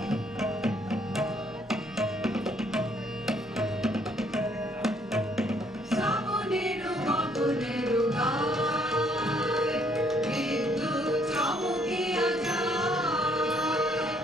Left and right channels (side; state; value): both; normal; correlation 0.66